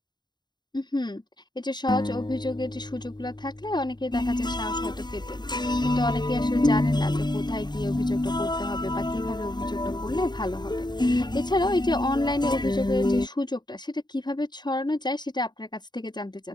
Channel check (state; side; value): late; right; 0.21 ms